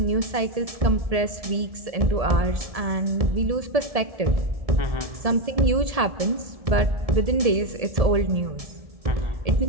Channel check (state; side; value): late; left; 1.7 ms